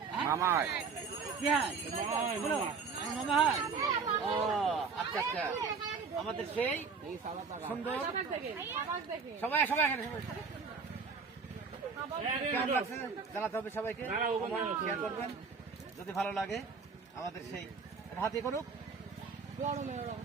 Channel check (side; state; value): left; quieter; 5.2 dB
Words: মামা? কি হয় মামা? হয় ও আচ্ছা আচ্ছা। আমাদের সেই সুন্দর সবাই সবাই এখানে কেমন লাগছে জানাতে হবে সবাইকে, শেয়ার করবেন যদি ভালো লাগে। আমাদের সেই হাতে করুক,